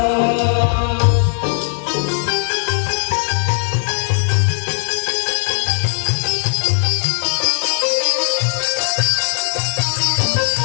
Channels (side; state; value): right; silent; digital silence